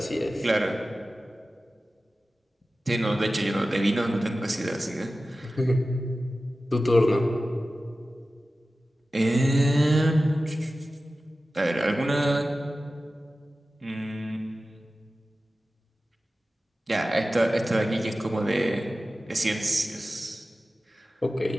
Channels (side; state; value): both; normal; correlation 0.95